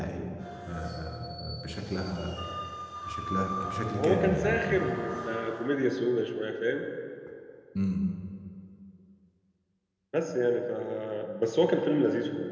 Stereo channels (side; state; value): both; identical; correlation 1.00